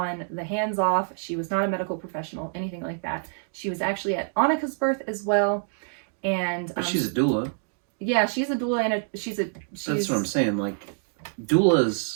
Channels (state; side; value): silent; left; 61 dB below the other